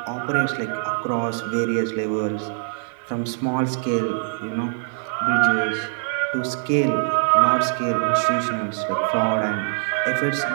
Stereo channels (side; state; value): left; silent; digital silence